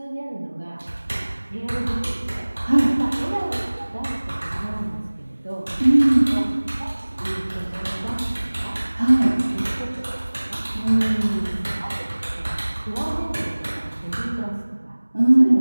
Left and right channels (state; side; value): inverted; both; correlation -1.00